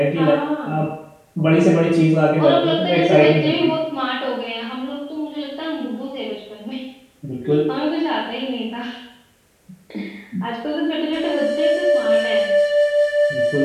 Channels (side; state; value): both; identical; correlation 1.00